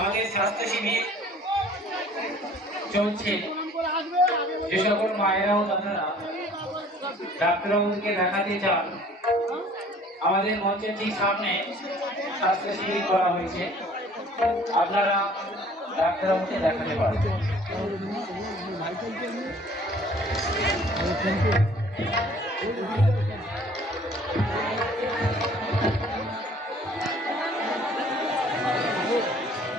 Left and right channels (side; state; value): both; normal; correlation 0.53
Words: স্বাস্থ্য শিবির চলছে। যে সকল মায়েরা ও দাদারা ডাক্তারবাবুকে দেখাতে চান, আমাদের মঞ্চের ঠিক সামনে স্বাস্থ্য শিবির করা হয়েছে, আপনারা ডাক্তারবাবুকে দেখাতে পারেন।